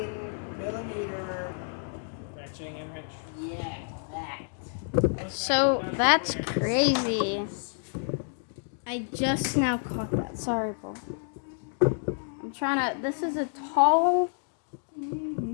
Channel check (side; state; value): right; silent; digital silence